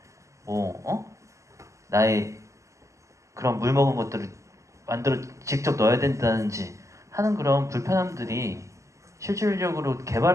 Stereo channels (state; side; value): late; left; 0.15 ms